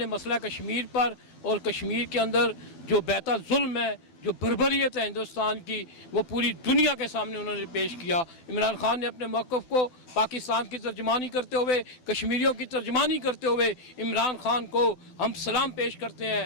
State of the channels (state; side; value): late; right; 12 ms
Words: مسئلہ کشمیر پر اور کشمیر کے اندر جو بیتا ظلم ہے، جو بربریت ہے ہندوستان کی، وہ پوری دنیا کے سامنے انہوں نے پیش کیا۔ عمران خان نے اپنے موقف کو پاکستان کی ترجمانی کرتے ہوئے، کشمیریوں کی ترجمانی کرتے ہوئے عمران خان کو ہم سلام پیش کرتے ہیں۔